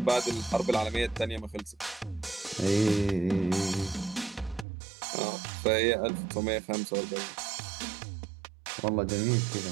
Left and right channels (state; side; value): drops out; left; at 4.7 s